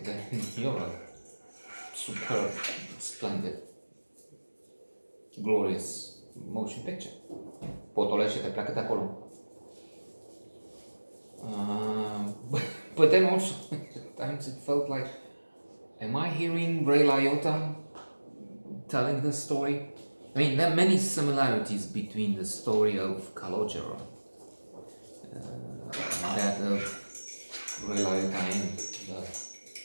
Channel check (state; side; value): inverted; both; correlation -1.00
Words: then you're a superb, splendid, glorious motion picture. Potolește te pleacă de acolo. But then also, at times it felt like, am I hearing Ray Liotta telling this story? I mean, there are many similarities between the story of Calogero and that of Ray Liotta in the